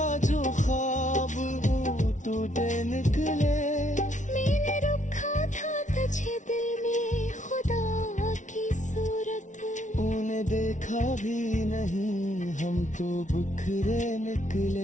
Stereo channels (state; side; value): late; right; 0.36 ms